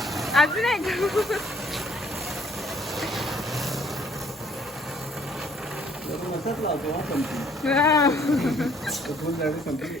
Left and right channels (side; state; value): both; normal; correlation 0.61